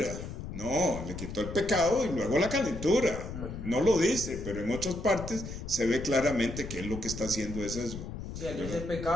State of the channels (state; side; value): noise; left; rumble, 8 dB below the sound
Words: No, le quitó el pecado y luego la calentura. No lo dice, pero en otras partes se ve claramente que él lo que está haciendo es eso. Sí, al dice el